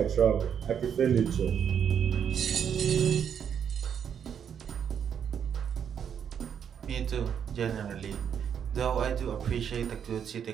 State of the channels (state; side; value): quieter; left; 8.1 dB